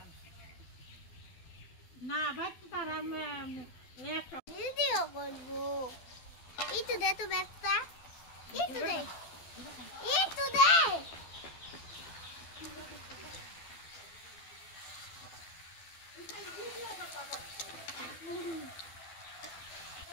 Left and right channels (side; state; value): right; late; 12 ms